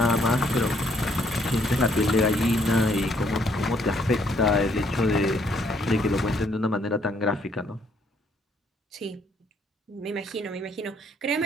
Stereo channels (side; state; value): both; normal; correlation 0.68